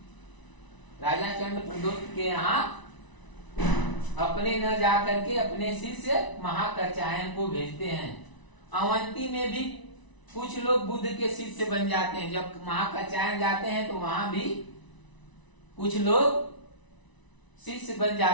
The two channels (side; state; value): right; late; 1.0 ms